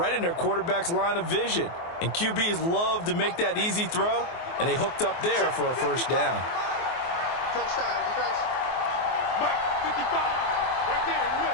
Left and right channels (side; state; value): right; late; 24 ms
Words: in their quarterback's line of vision. And QBs love to make that easy throw, and they hooked up there for a 1st down. Touchdown, defense. Mike, 55, right there in the